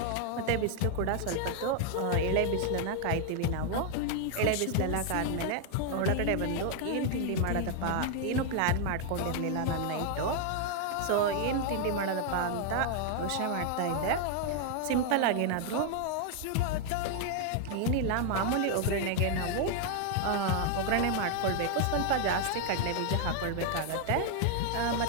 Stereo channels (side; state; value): both; different; correlation 0.00